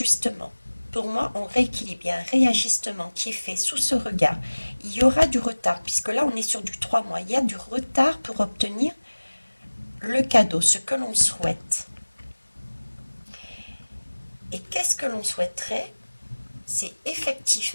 Pour moi, on rééquilibre. Il y a un réajustement qui est fait sous ce regard. Il y aura du retard, puisque là, on est sur du 3 mois. Il y a du retard pour obtenir le cadeau, ce que l'on souhaite. Et qu'est-ce que l'on souhaiterait? C'est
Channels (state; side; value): inverted; both; correlation -1.00